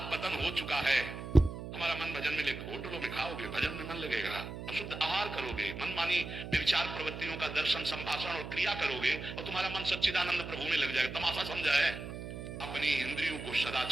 पतन हो चुका है। हमारा मन भजन में लेकर होटलों में खाओगे, भजन में मन लगेगा, अशुद्ध आहार करोगे, मनमानी विचार प्रवृत्तियों का दर्शन, संभाषण और क्रिया करोगे और तुम्हारा मन सच्चिदानंद प्रभु में लग जाएगा। तमाशा समझा है? अपनी इंद्रियों को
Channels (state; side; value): noise; right; hum, 8 dB below the sound